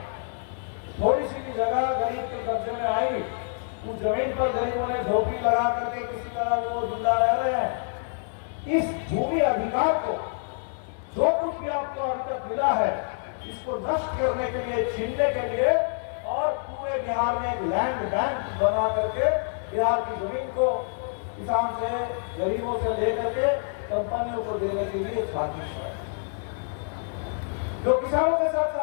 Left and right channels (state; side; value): silent; right; digital silence